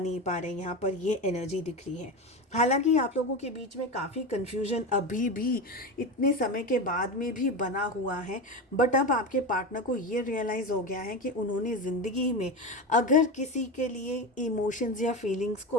पा रहे हैं। यहाँ पर ये एनर्जी दिख रही है। हालांकि आप लोगों के बीच में काफ़ी कन्फ्यूजन अभी भी इतने समय के बाद में भी बना हुआ है, बट अब आपके पार्टनर को ये रियलाइज़ हो गया है कि उन्होंने ज़िंदगी में अगर किसी के लिए इमोशंस या फीलिंग्स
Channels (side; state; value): both; normal; correlation 0.21